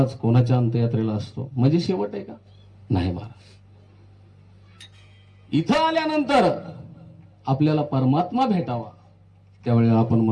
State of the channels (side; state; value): both; identical; correlation 1.00